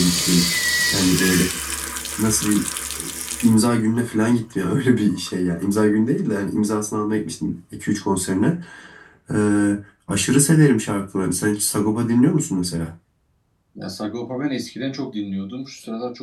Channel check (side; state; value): both; identical; correlation 1.00